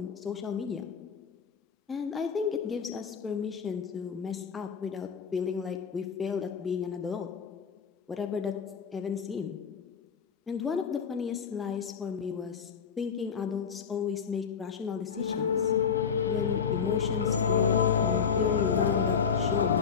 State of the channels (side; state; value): right; quieter; 6.7 dB